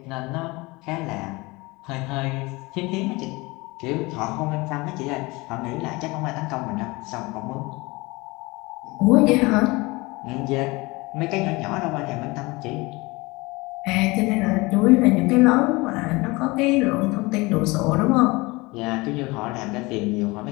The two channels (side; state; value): right; quieter; 23.6 dB